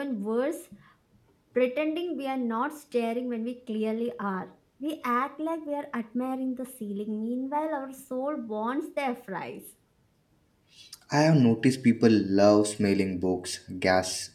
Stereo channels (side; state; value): both; identical; correlation 1.00